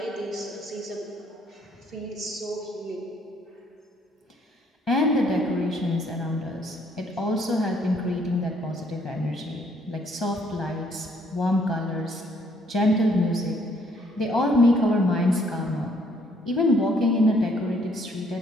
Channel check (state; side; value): normal; both; correlation 0.66